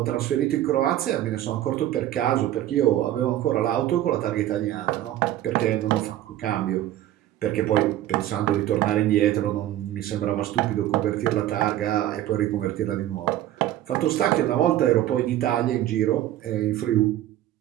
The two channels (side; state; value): left; quieter; 13.2 dB